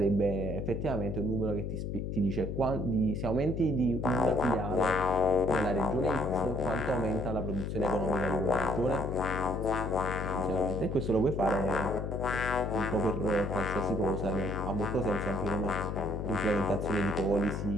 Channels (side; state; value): left; noise; hum, 3 dB below the sound